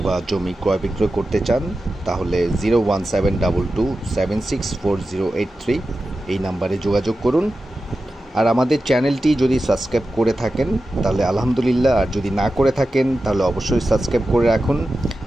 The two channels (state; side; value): normal; both; correlation 0.93